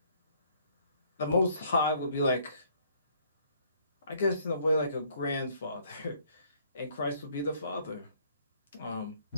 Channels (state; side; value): inverted; both; correlation -0.63